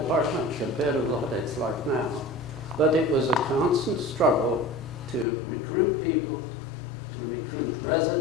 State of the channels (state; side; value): drops out; right; at 5.2 s